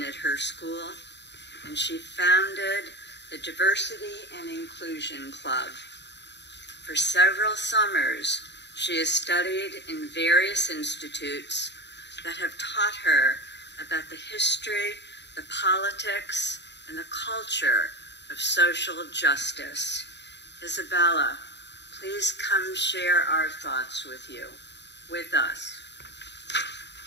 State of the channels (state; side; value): late; right; 0.51 ms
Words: at her school, and she founded the Diversity and Inclusion Club. For several summers, she has studied in various institutes that have taught her about the history, the politics, and the culture of social justice. Isabella, please come share our thoughts with us.